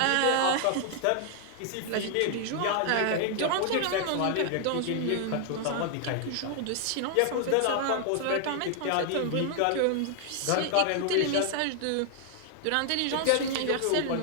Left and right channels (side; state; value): both; different; correlation 0.00